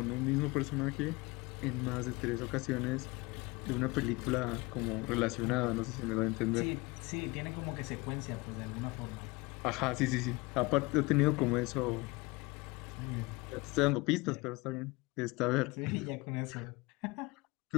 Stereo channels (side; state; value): right; quieter; 24.2 dB